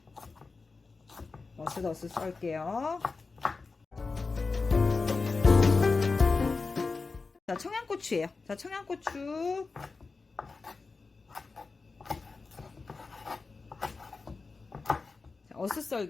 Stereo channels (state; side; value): quieter; right; 4.2 dB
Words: 어슷어슷 썰게요. 자, 청양고추예요. 자, 청양고추